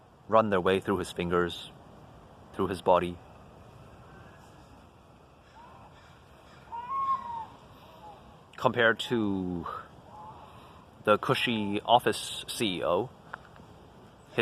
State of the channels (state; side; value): identical; both; correlation 1.00